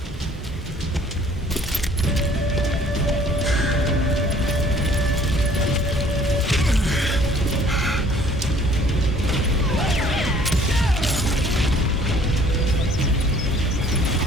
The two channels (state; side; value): normal; both; correlation 0.56